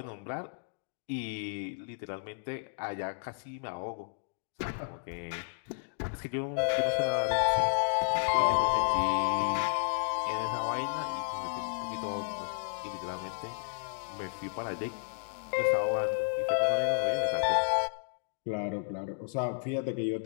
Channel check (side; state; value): right; silent; digital silence